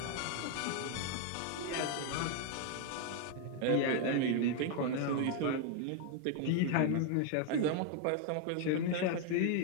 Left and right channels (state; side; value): different; both; correlation 0.00